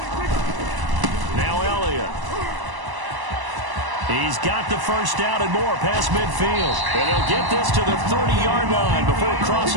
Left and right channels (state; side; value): late; left; 1.0 ms